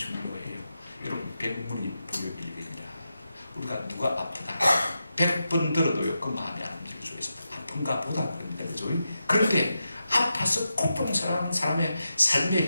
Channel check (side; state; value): both; inverted; correlation -0.88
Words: 여러분, 백문이 불여일견이라. 우리가 누가 아프다 100번 들어도요 그 마음이 안 움직일 수가 있습니다. 아픈가 보다 그럽니다. 그죠? 그런데 아파서 고통 사랑하는 사람의